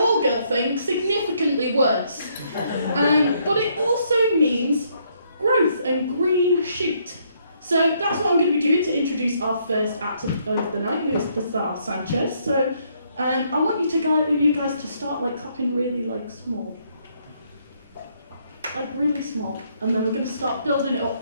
girl thing significantly worse. But it also means growth and green shoot. So that's what I'm going to be doing to introduce our first actor of the night, who is the star Sanchez. So I want you guys to start like clapping really small. Like really small. And then we're going to start building it up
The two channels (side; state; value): both; inverted; correlation -0.70